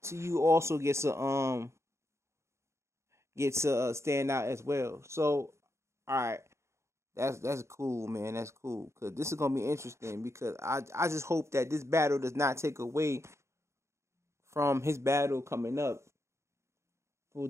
to you also gets a standout as well. So all right, that's cool, man. That's cool because this is gonna be interesting because I just hope that this battle does not take away from his battle coming up for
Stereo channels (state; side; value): late; left; 0.14 ms